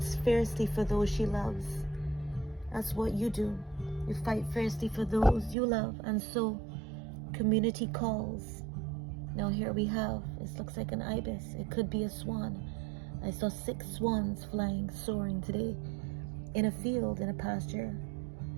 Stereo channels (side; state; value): left; drops out; at 5.6 s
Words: fiercely for those she loves. That's what you do. You fight fiercely for those you love, and so community calls. Now here we have, it looks like an ibis. It could be a swan. I saw 6 swans flying, soaring today in a field, in a pasture